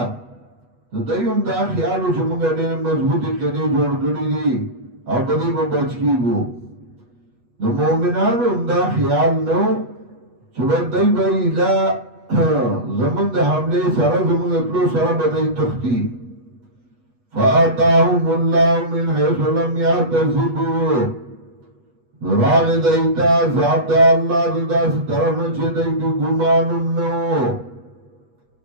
دایوم دا خیالو چې موږ ډېر مضبوطی کړي جوړ کړی دي او په دې په بچ کیږو نو مؤمنانو دا خیال نو چې ودای به اله زمونږ د حمله سره زمونږ ټول سره بدای تختی فاتاهم الله من حيث لم يحتسبوا راغ دایتا ذات الله د داس طرف چې دای په ګمانم نو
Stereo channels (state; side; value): late; left; 8.2 ms